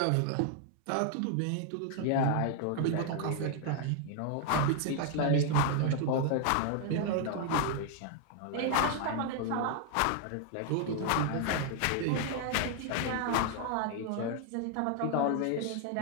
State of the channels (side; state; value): both; different; correlation 0.00